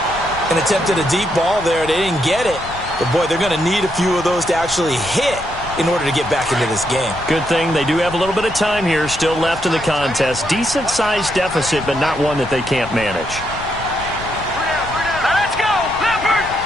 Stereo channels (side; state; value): left; noise; rumble, 14 dB below the sound